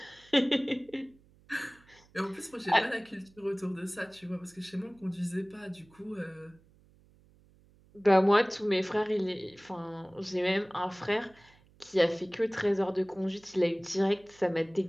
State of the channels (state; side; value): noise; right; hum, 29 dB below the sound